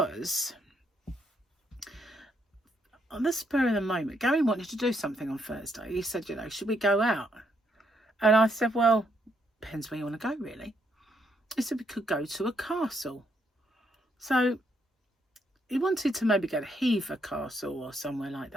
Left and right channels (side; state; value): both; normal; correlation 0.74